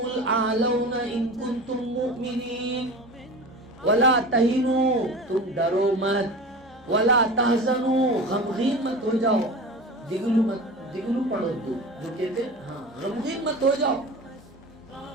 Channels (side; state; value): both; normal; correlation 0.33